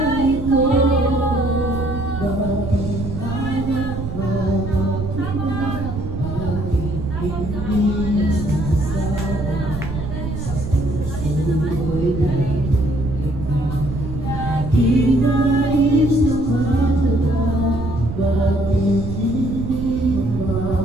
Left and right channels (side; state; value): right; noise; rumble, 6 dB below the sound